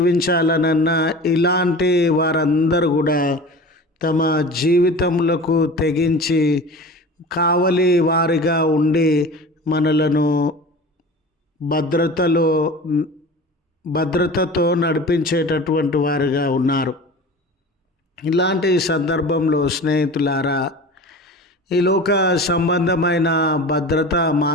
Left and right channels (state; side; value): normal; both; correlation 0.36